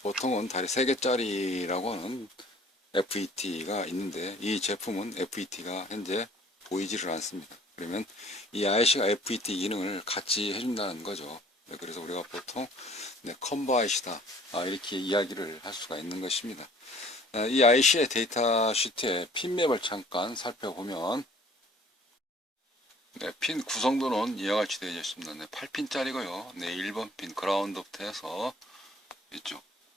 다리 3개짜리라고 하는 FET가 있는데 이 제품은 FET가 현재 보이지를 않습니다. 그러면 이 IC가 FET 기능을 같이 해준다는 거죠. 그래서 우리가 보통 컴보 IC다 이렇게 이야기를 할 수가 있는 것입니다. 이 IC의 데이터 시트의 핀맵을 잠깐 살펴보면 핀 구성도는 이와 같이 되어 있습니다. 8핀짜리고요. 1번 핀 그라운드부터 해서 이쪽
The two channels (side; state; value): both; normal; correlation 0.53